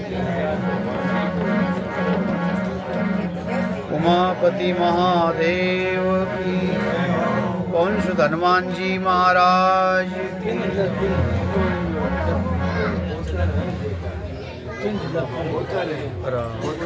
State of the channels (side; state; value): both; identical; correlation 1.00